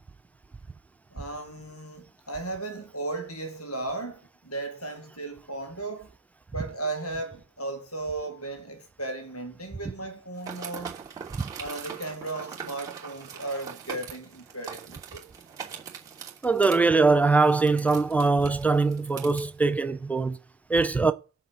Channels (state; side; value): quieter; left; 3.4 dB